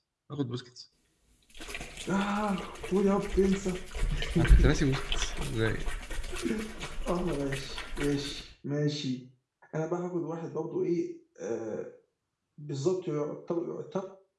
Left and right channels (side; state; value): both; identical; correlation 1.00